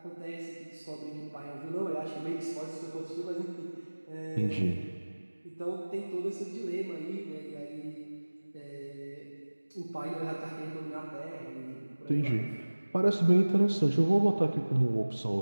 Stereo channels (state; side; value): inverted; both; correlation -1.00